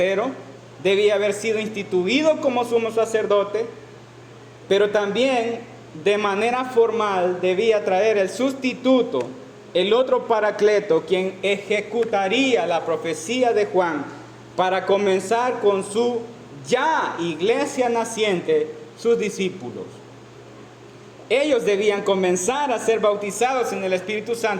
debía haber sido instituido como sumo sacerdote, pero también de manera formal debía traer el sustituto, el otro Paracleto, quien ejecutaría la profecía de Juan para comenzar con su ya iglesia naciente, sus discípulos. Ellos debían comenzar a ser bautizados en el Espíritu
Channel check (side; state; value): both; identical; correlation 1.00